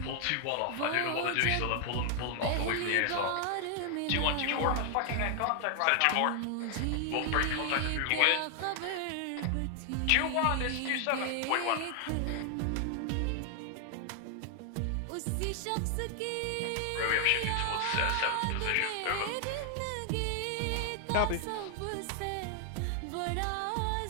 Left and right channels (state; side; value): different; both; correlation 0.00